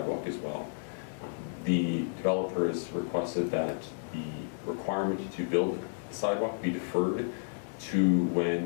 as well. The developer has requested that the requirement to build the sidewalk be deferred to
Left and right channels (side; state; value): right; silent; digital silence